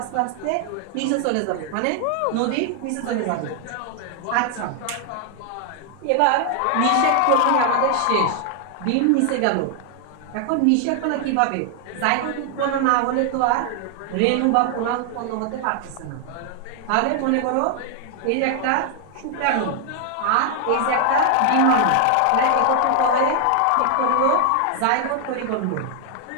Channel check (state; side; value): different; both; correlation 0.00